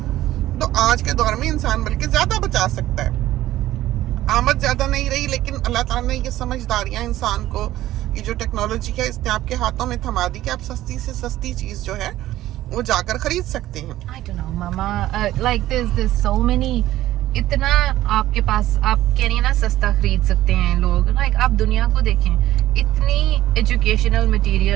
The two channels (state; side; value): quieter; left; 14.7 dB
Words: तो आज के दौर में इंसान बल्कि ज्यादा बचा सकता है। आमद ज्यादा नहीं रही, लेकिन अल्लाह ताला ने ये समझदारियां इंसान को, ये जो टेक्नोलॉजी है इसने आपके हाथों में थमा दी कि आप सस्ती से सस्ती चीज जो है वो जाकर खरीद सकते हैं। I don't know, Mama. Like there's so many. इतना आपके पास, आप कह रही है ना सस्ता खरीद सकते हैं लोग। Like आप दुनिया को देखें, इतनी एजुकेशनल